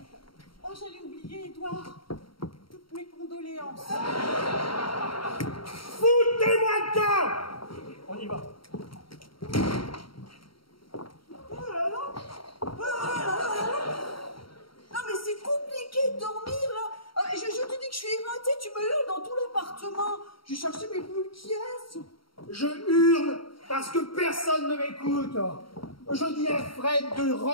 Oh, j'allais oublier, Édouard. Toutes mes condoléances. Foutez-moi le corps. On y va. Oh là là. Non, mais c'est compliqué de dormir, là. Je te dis que je suis éreintée, tu me hurles dans tout l'appartement. J'ai cherché mes boules qui restent. Je hurle parce que personne ne m'écoute. Je dis à Fred de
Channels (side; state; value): right; late; 0.74 ms